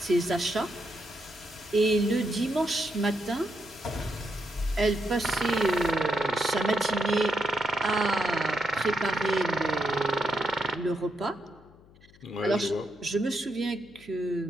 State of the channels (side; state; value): left; noise; hum, 25 dB below the sound